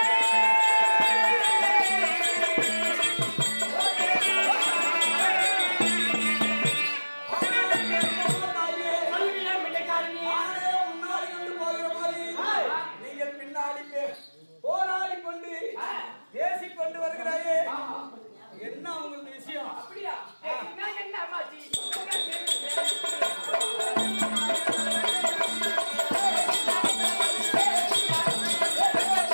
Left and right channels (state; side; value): inverted; both; correlation -1.00